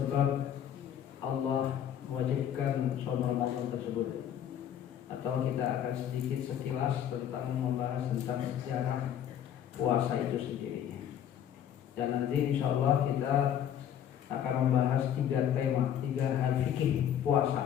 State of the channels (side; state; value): right; quieter; 9.9 dB